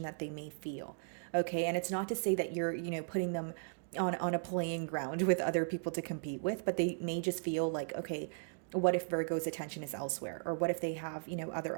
that they may feel. Okay, and it's not to say that you're, putting them on a playing ground with other people to compete with, but they may just feel like, okay, what if Virgo's attention is elsewhere? Or what if they have,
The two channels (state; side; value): silent; left; digital silence